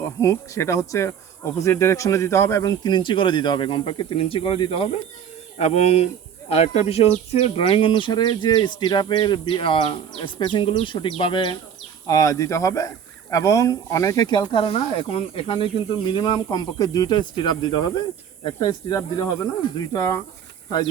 হুক সেটা হচ্ছে অপোজিট ডিরেকশনে দিতে হবে এবং 3 ইঞ্চি করে দিতে হবে, কমপক্ষে 3 ইঞ্চি করে দিতে হবে। এবং আরেকটা বিষয় হচ্ছে ড্রয়িং অনুসারে যে স্টিরাপের স্পেসিংগুলো সঠিকভাবে দিতে হবে এবং অনেকে খেয়াল করে না, এখানে কিন্তু মিনিমাম কমপক্ষে 2টা স্টিরাপ দিতে হবে, একটা স্টিরাপ দিলে হবে না, 2টা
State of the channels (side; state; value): left; quieter; 8.3 dB